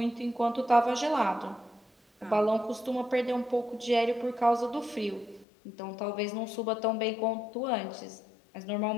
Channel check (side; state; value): right; drops out; at 5.5 s